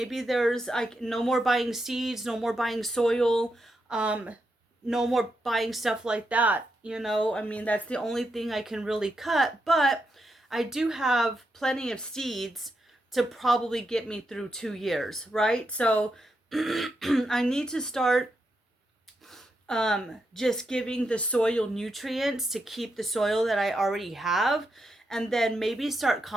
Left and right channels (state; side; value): normal; both; correlation 0.84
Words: there's like no more buying seeds, no more buying soil, um, no more buying stuff like that. You know, I mean, that's the only thing I can really cut, but I do have plenty of seeds to probably get me through 2 years, right? So I need to start just giving the soil nutrients to keep the soil that I already have, and then maybe start